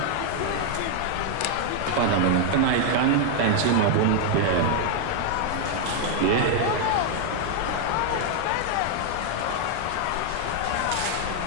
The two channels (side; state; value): both; different; correlation 0.00